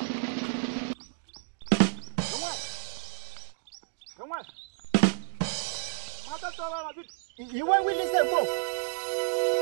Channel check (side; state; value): left; silent; digital silence